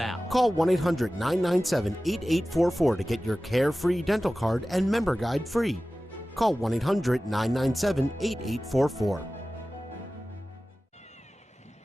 Call 1-800-997-8844 to get your Carefree Dental Card and member guide free. Call 1-800-997-8844.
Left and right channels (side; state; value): both; normal; correlation 0.96